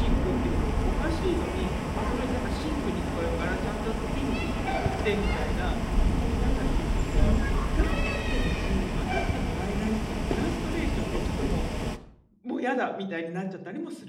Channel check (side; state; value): both; identical; correlation 1.00